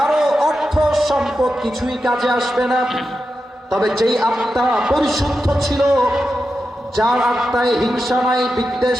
অর্থ সম্পদ কিছুই কাজে আসবে না, তবে যেই আত্মা পরিশুদ্ধ ছিল, যার আত্মায় হিংসা নাই,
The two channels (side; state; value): both; normal; correlation 0.90